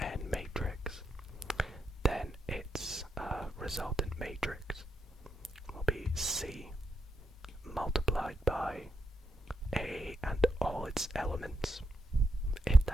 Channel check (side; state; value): both; normal; correlation 0.81